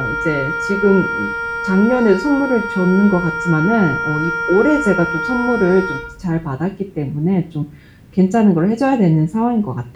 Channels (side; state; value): both; identical; correlation 1.00